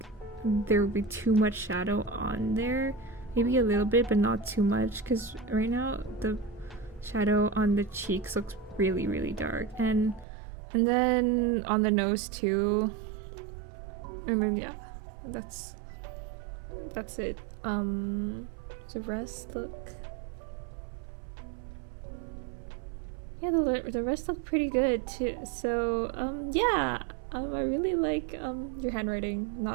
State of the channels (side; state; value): left; drops out; at 10.2 s